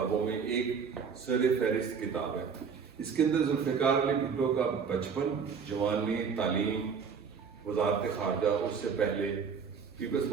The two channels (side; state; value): left; quieter; 6.2 dB